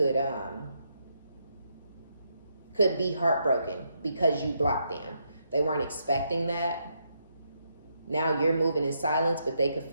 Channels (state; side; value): inverted; both; correlation -0.79